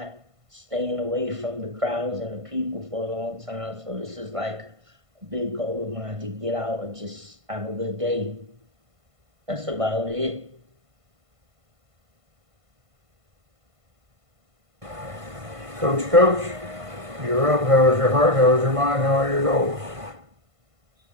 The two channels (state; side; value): late; left; 1.5 ms